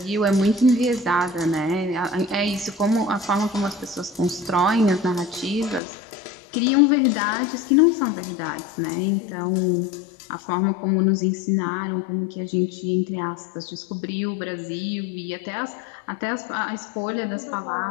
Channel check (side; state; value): right; drops out; at 5.8 s